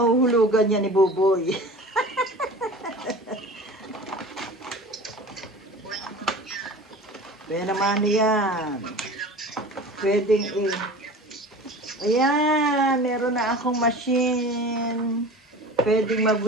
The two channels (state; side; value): normal; both; correlation 0.38